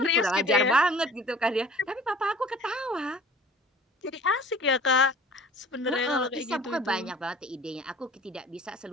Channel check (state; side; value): normal; both; correlation 0.47